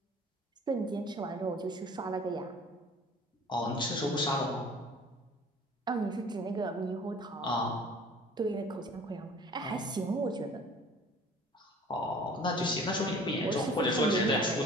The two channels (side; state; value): both; normal; correlation 0.48